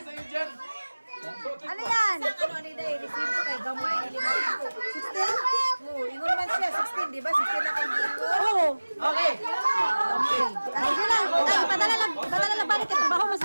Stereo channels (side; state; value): both; inverted; correlation -1.00